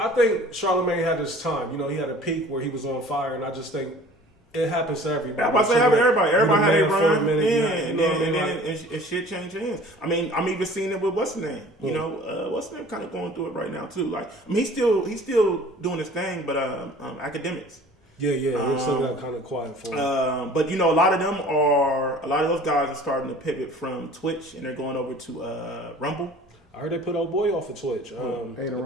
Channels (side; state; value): both; normal; correlation 0.47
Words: Charlamagne had his time. He had a peak where he was on fire, and I just think it happens to everybody. I'm about to say everybody. Everybody had a run. And shit changed hands. I'm even seeing it with what's his name. What's his name kind of going through it right now too. Like, he's still doing his thing, but academics. Yeah, it still got kind of quiet for him. But a lot of those guys are starting to pivot from Twitch, and they're going over to Rumble. I heard they put old boy off of Twitch. The